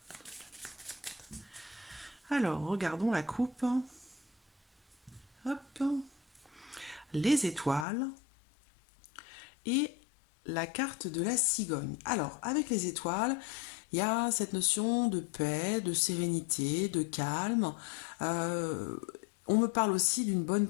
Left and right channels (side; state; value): right; drops out; at 7.9 s